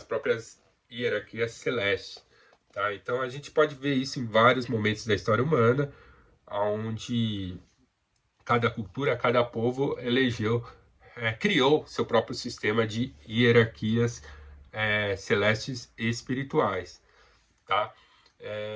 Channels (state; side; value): identical; both; correlation 1.00